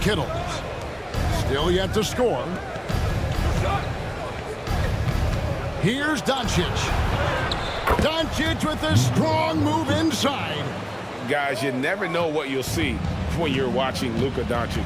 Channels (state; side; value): identical; both; correlation 1.00